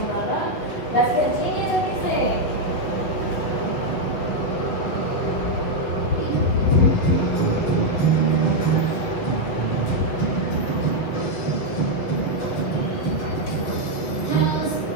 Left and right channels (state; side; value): late; right; 8.0 ms